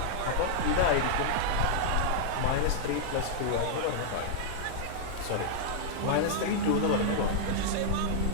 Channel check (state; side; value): different; both; correlation -0.02